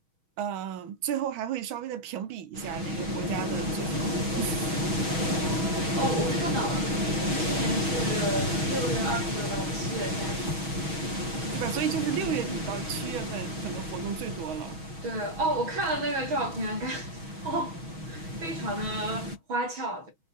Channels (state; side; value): late; left; 6.2 ms